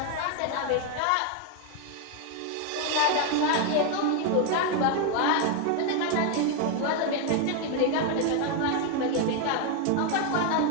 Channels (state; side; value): different; both; correlation 0.01